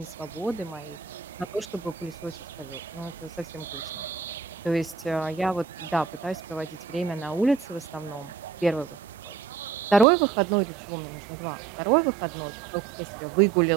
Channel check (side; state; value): left; drops out; at 10.1 s